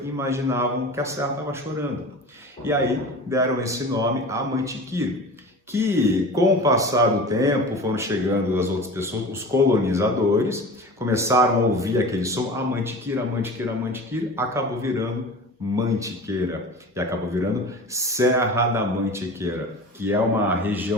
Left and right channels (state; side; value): normal; both; correlation 0.35